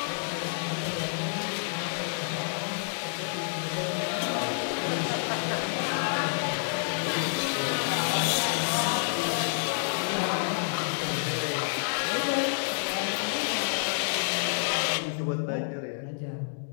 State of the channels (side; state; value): right; silent; digital silence